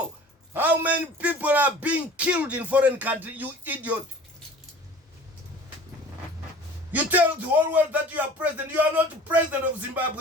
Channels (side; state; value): both; normal; correlation 0.45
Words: how many people are being killed in foreign countries, you idiot. You tell the whole world that you are president. You are not the president of